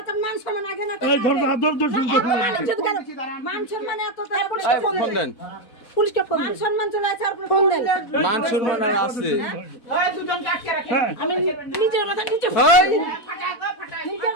ফোন দেন পুলিশকে ফোন মান সম্মান চলে আছে আর ফোন দেন মান সম্মান আর আছে ওই দুজন কাটকে রাখে আমি নিজের মাথা নিজে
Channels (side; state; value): right; late; 4.1 ms